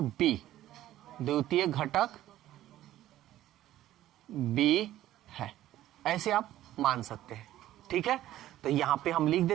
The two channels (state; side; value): quieter; left; 13.8 dB